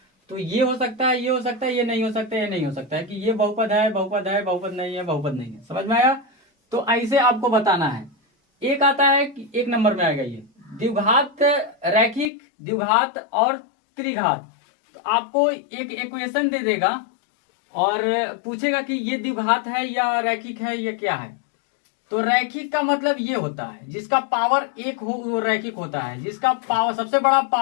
तो ये हो सकता है, ये हो सकता है, ये नहीं हो सकता है, ये नहीं हो सकता है कि ये बहुपद है, बहुपद है, बहुपद नहीं है, बहुपद नहीं है। समझ में आया? तो ऐसे आपको बताना है। एक आता है कि 1 नंबर में आएगा ये द्विघात, रैखिक, द्विघात और त्रिघात। तो आपको एक इक्वेशन दे देगा और पूछेगा कि ये द्विघात है या रैखिक है, ये क्या है। तो रैखिक का मतलब ये होता है जिसका पावर 1 हो वो रैखिक होता है, जिसका पावर सबसे बड़ा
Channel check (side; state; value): right; drops out; at 12.3 s